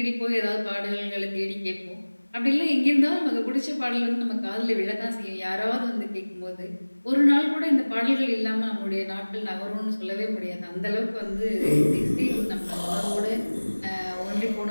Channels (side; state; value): both; inverted; correlation -1.00